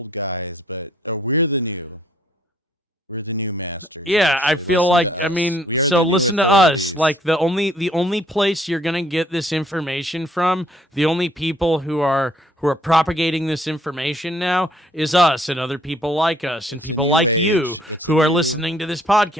Yeah, I feel like, so listen to us. Like, the only place you're gonna get this information from, the only people who are propagating this information now is us and other people like us and people like you who are listening to this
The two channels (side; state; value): both; normal; correlation 0.63